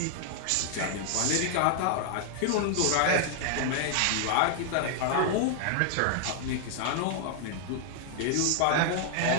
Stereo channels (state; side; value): different; both; correlation 0.00